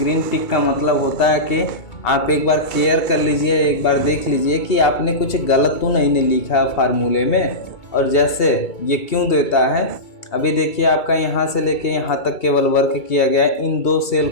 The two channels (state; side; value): late; right; 2.3 ms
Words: टिक का मतलब होता है कि आप एक बार केयर कर लीजिए, एक बार देख लीजिए कि आपने कुछ गलत तो नहीं लिखा फार्मूले में। और जैसे ये क्यों देता है, अभी देखिए आपका यहाँ से लेके यहाँ तक केवल वर्क किया गया है, इन 2 सेल